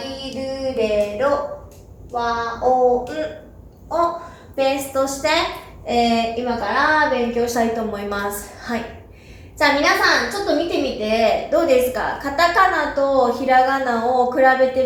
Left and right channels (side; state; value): both; identical; correlation 1.00